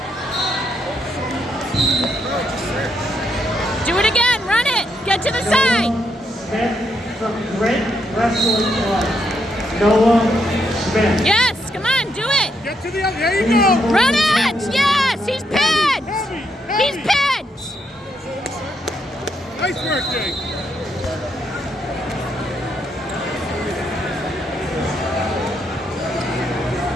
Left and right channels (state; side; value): normal; both; correlation 0.78